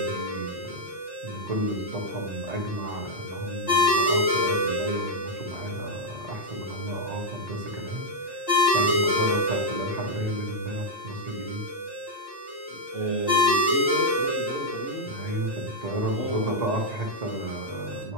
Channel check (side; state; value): both; normal; correlation 0.00